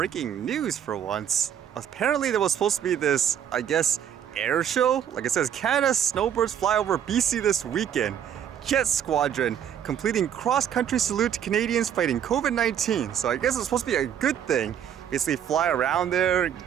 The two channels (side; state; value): left; quieter; 9.2 dB